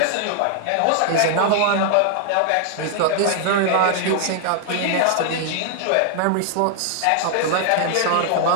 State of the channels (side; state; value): both; different; correlation -0.01